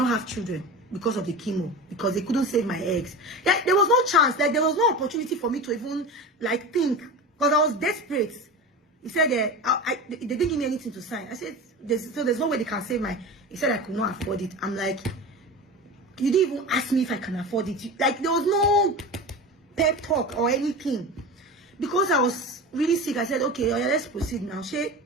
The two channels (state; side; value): normal; both; correlation 0.29